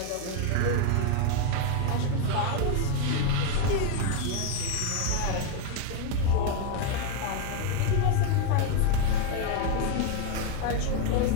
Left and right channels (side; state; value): both; different; correlation 0.01